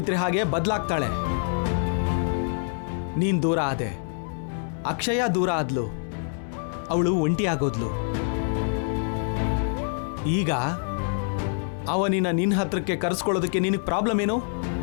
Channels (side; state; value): right; silent; 61 dB below the other